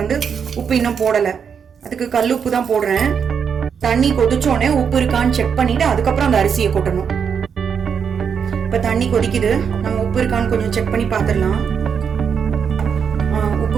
வந்து உப்பு இன்னும் போடல, அதுக்கு கல் உப்பு தான் போடுறேன். தண்ணி கொதிச்சோடனே உப்பு இருக்கான்னு செக் பண்ணிட்டு அதுக்கப்புறம் அந்த அரிசியை கொட்டணும். இப்ப தண்ணி கொதிக்குது, நம்ம உப்பு இருக்கான்னு கொஞ்சம் செக் பண்ணி பாத்துடலாம். உப்பு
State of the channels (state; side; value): quieter; left; 6.9 dB